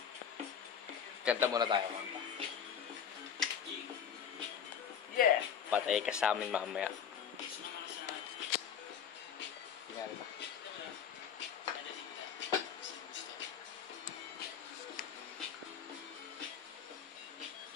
Kanta muna tayo, kanta. Yeah. Patay ka sa amin mamaya. Tingnan ba?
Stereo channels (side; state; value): right; quieter; 8.0 dB